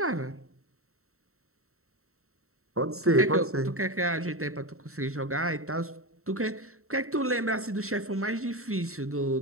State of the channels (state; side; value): late; left; 0.63 ms